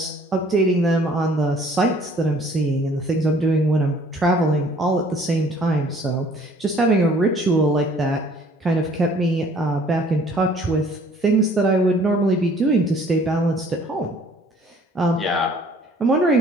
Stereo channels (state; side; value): normal; both; correlation 0.56